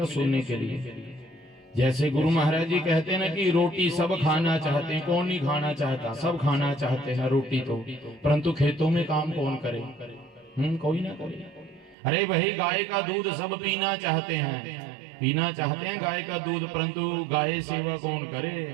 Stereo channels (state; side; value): drops out; left; at 12.0 s